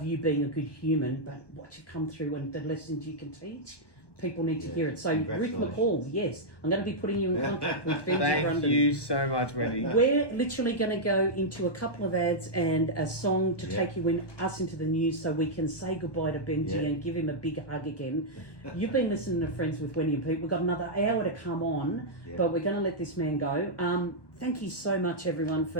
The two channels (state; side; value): late; right; 1.2 ms